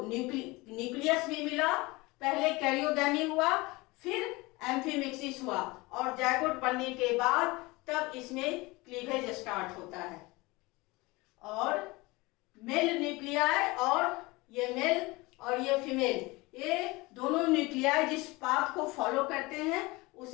न्यूक्लियस भी मिला, पहले कैरियोगैमी हुआ फिर एम्फीमिक्सिस हुआ, और जायगोट बनने के बाद तब इसमें क्लीवेज स्टार्ट होता है। और मेल न्यूक्लियाई और ये मेल और ये फीमेल, ये दोनों न्यूक्लियाई जिस पाथ को फॉलो करते हैं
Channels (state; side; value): quieter; right; 23.0 dB